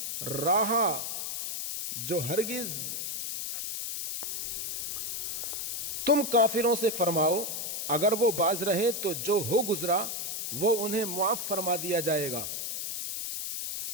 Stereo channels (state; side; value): noise; left; hiss, 3 dB below the sound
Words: ہو گزرا وہ انہیں معاف فرما دیا جائے گا،